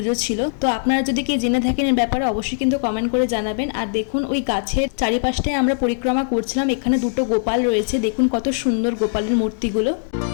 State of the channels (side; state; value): right; silent; digital silence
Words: ছিল। তো আপনারা যদি কেউ জেনে থাকেন এর ব্যাপারে অবশ্যই কিন্তু কমেন্ট করে জানাবেন। আর দেখুন ওই গাছের চারিপাশটায় আমরা পরিক্রমা করছিলাম, এখানে 2টো গোপাল রয়েছে, দেখুন কত সুন্দর গোপালের মূর্তিগুলো।